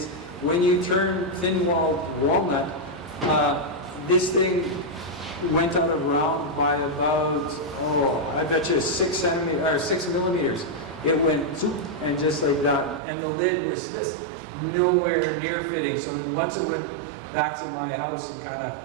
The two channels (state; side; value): drops out; left; at 13.0 s